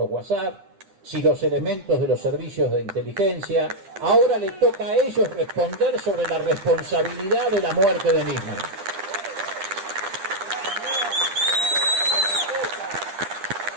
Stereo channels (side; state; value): left; late; 10 ms